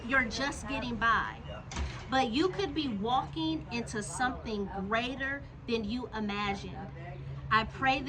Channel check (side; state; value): both; identical; correlation 1.00